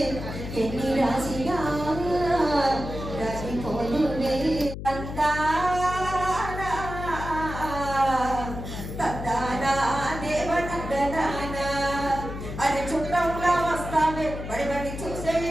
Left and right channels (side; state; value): left; noise; hum, 8 dB below the sound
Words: ఎన్ని రాసినా రాలిపోదులే. అరే చుట్టంలా వస్తావే బడిబడి చూసే